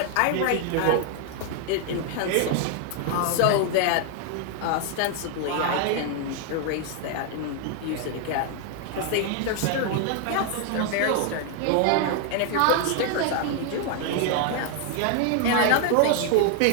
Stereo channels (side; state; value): both; different; correlation 0.00